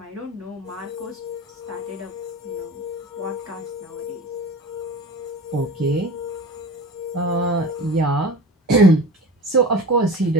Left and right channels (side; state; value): both; normal; correlation 0.35